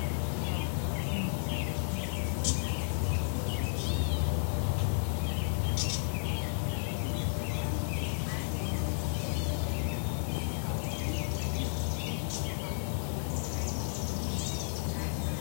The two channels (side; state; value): right; silent; 56 dB below the other